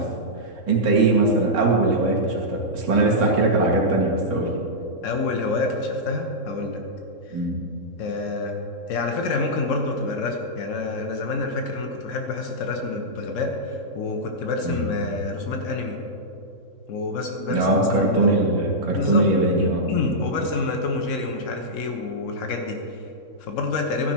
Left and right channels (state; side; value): late; right; 3.7 ms